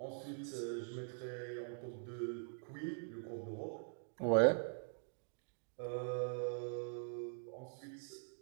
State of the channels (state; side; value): silent; left; digital silence